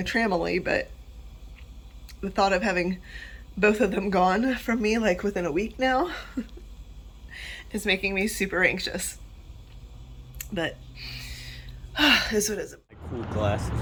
tramily. But the thought of having both of them gone from me like within a week now is making me super anxious. But is what it is. Cool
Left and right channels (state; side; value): identical; both; correlation 1.00